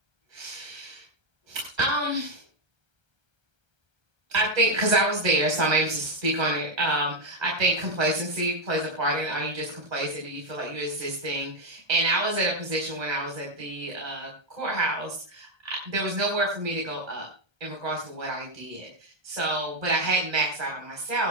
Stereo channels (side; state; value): left; late; 1.3 ms